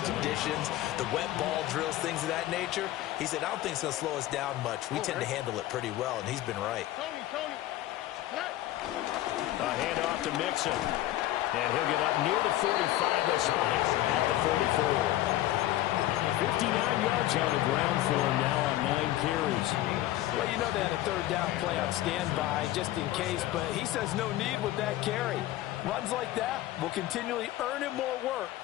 conditions, the wet ball drills, things of that nature. He said, I don't think it's going to slow us down much. We tend to handle it pretty well, and he's been right. A handoff to Mixon. And he'll get up near the 45, they'll spot it at the 44. 59 yards on the ground for him now on 9 carries. Well, you know they had a third down play on standby just in case, but he says no need with that carry. Runs like that will continually earn him more work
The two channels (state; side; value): quieter; right; 14.9 dB